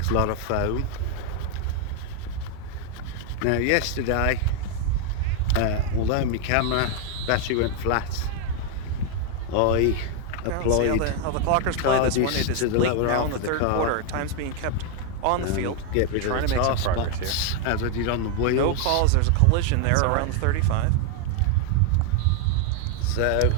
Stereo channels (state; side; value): different; both; correlation 0.01